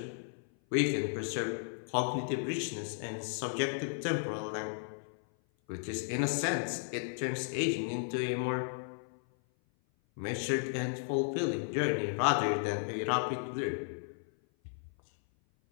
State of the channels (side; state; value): right; silent; 55 dB below the other